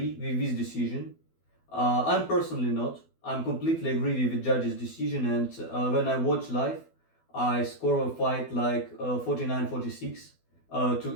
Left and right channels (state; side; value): late; right; 12 ms